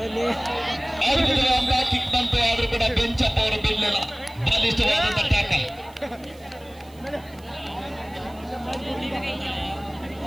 ಕಿಕ್ ಬಂತು. ಆದ್ರೂ ಕೂಡ ಬೆಂಚಪ್ಪ ಅವರು ಬೀಳಲಿಲ್ಲ. ಬಲಿಷ್ಠವಾದಂತ ಟ್ಯಾಕಲ್.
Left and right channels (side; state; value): right; noise; hiss, 26 dB below the sound